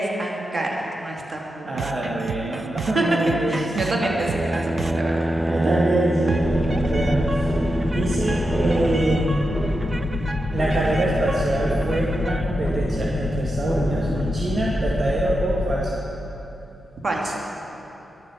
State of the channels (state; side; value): normal; both; correlation 0.88